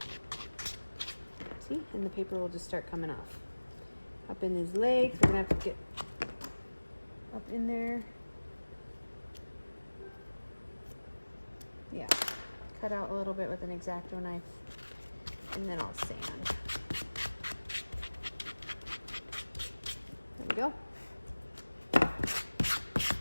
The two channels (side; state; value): both; inverted; correlation -1.00